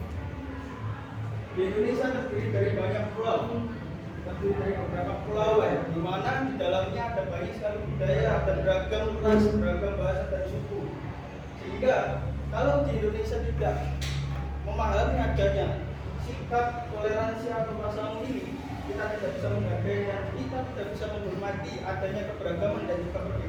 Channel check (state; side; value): identical; both; correlation 1.00